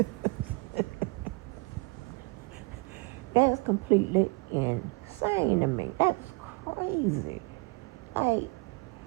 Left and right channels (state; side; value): quieter; left; 28.4 dB